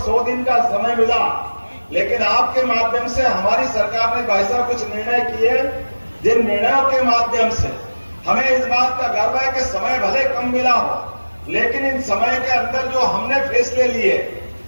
दिन का समय मिला, लेकिन आपके माध्यम से हमारी सरकार ने भाई साहब कुछ निर्णय किए, जिन निर्णयों के माध्यम से हमें इस बात का गर्व है कि समय भले कम मिला हो, लेकिन इन समय के अंदर जो हमने फैसले लिए,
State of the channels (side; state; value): both; inverted; correlation -1.00